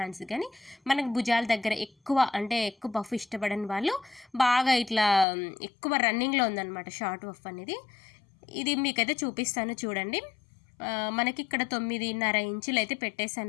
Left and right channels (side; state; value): right; drops out; at 5.2 s